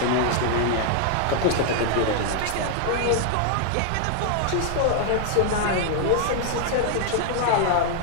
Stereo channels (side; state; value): both; different; correlation -0.01